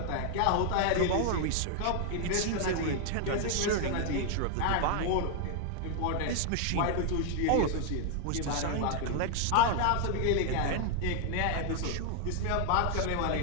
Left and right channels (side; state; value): both; different; correlation 0.00